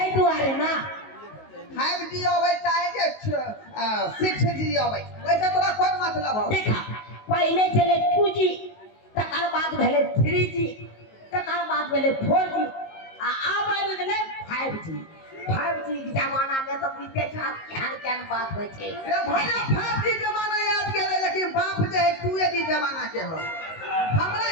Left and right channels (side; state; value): right; late; 19 ms